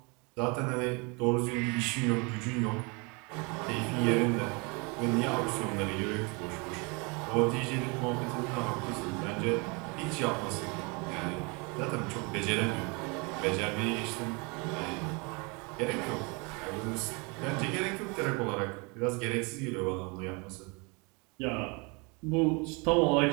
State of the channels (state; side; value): quieter; left; 30.2 dB